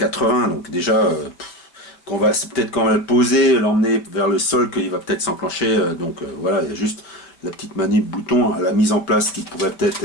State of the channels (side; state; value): right; late; 5.3 ms